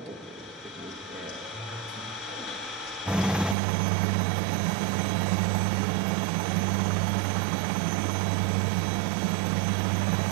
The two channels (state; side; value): drops out; left; at 3.6 s